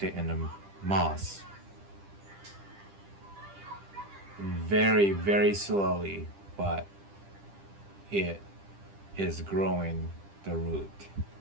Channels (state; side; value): late; left; 10 ms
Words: it in a moss. Very, very slowly, but it is growing the root.